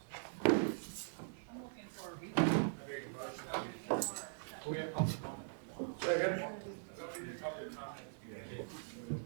I'm looking for a reason. We have public comment.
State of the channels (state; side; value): silent; left; 50 dB below the other